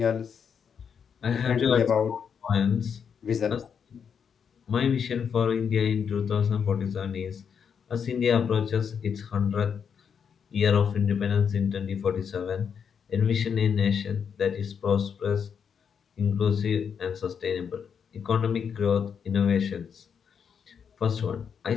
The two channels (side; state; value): right; quieter; 7.1 dB